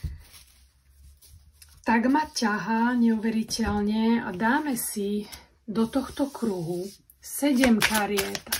tak ma ťahá neuveriteľne a dáme si do tohto kruhu 7 kariet,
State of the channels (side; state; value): both; identical; correlation 1.00